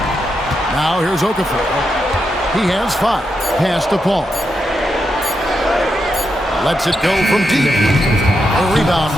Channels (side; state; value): both; normal; correlation 0.84